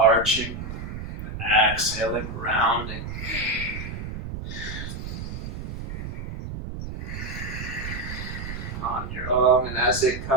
exhaling, rounding. On your own, and as it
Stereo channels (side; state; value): right; noise; rumble, 7 dB below the sound